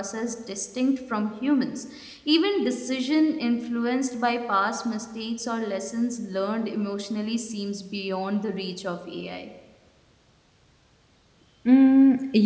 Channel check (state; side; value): identical; both; correlation 1.00